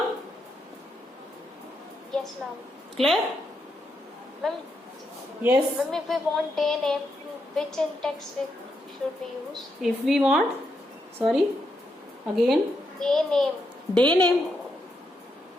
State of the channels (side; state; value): both; normal; correlation 0.81